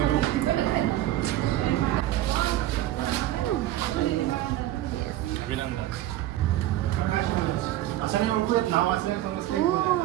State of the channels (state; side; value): quieter; left; 14.2 dB